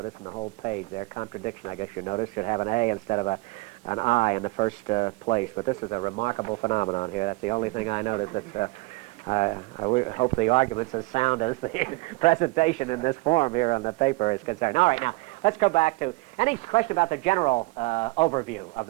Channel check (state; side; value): quieter; left; 23.8 dB